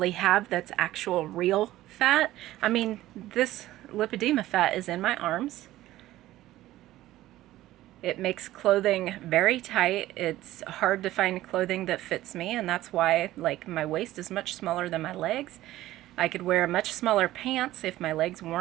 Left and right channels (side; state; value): left; quieter; 15.3 dB